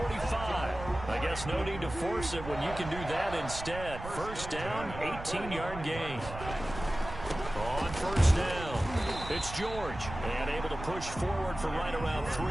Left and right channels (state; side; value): noise; right; rumble, 10 dB below the sound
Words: I guess no need to force it when you can do that instead. First down, 18-yard gain. On first down, it's George. And able to push forward for right around